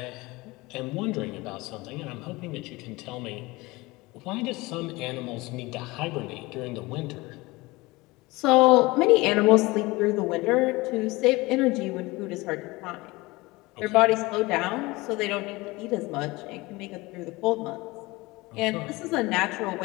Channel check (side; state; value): right; quieter; 22.1 dB